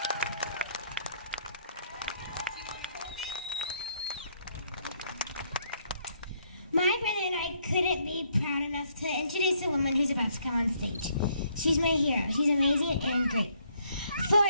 My brother and I couldn't be proud enough to introduce the woman who's about to come on stage. She's my hero. She's amazing and great. For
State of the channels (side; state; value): both; inverted; correlation -0.69